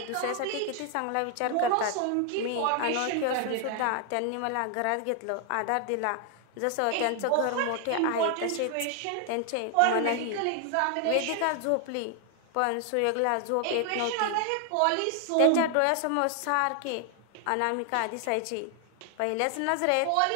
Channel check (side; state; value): both; different; correlation 0.00